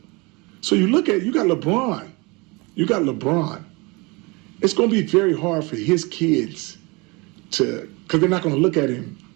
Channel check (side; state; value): left; quieter; 26.8 dB